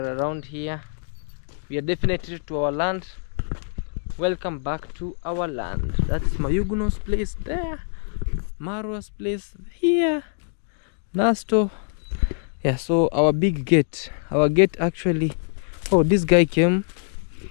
around here. We are definitely to our land. Welcome back to our land. That's Mayuguno's place there. Marwa's place here. Nasto. Yeah, so our big gate. Our gate actually. Oh, this guy came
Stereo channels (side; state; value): right; silent; digital silence